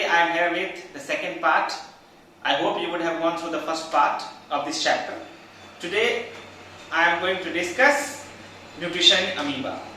I am here with the second part. I hope you would have gone through the first part of this chapter. Today I am going to discuss nutrition in amoeba.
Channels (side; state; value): both; identical; correlation 1.00